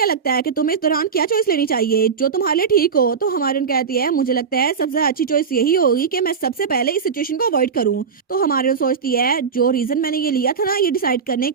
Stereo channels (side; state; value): left; quieter; 6.1 dB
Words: लगता है कि तुम्हें इस दौरान क्या चॉइस लेनी चाहिए जो तुम्हारे लिए ठीक हो। तो हमारी उन कहती है मुझे लगता है सबसे अच्छी चॉइस यही होगी कि मैं सबसे पहले इस सिचुएशन को अवॉइड करूं। तो हमारी सोचती है जो रीजन मैंने ये लिया था ना ये डिसाइड करने